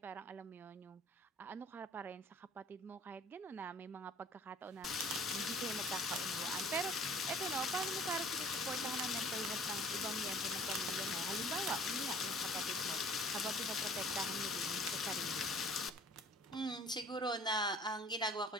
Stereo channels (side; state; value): both; normal; correlation 0.51